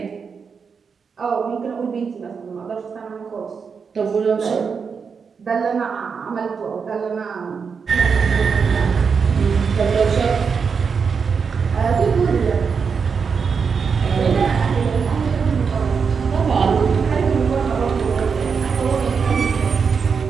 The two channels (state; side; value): quieter; left; 5.8 dB